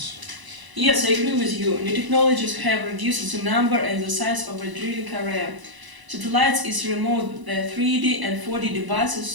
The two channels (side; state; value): left; late; 1.0 ms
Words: Yes, I agree with you. New technologies have reduced the number and the size of a drilling area. Satellites is remote the 3D and 4D